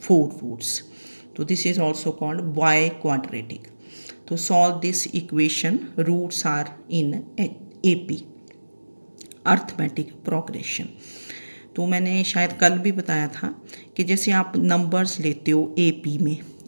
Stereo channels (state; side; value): inverted; both; correlation -1.00